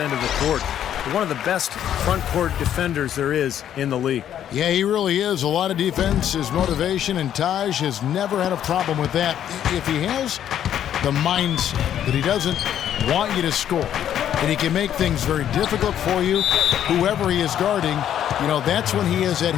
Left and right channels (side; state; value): right; quieter; 10.3 dB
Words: of the court. One of the best front court defenders there is in the league. Yeah, he really is. A lot of defense, his motivation, and Taj has never had a problem with that. If he has the mindset that he doesn't want you to score, and he can make things very difficult for you, whoever he is guarding, you know, that's when he is at